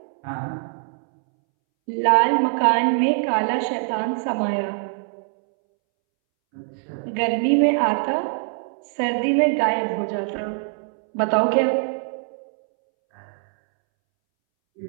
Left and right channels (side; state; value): left; silent; 63 dB below the other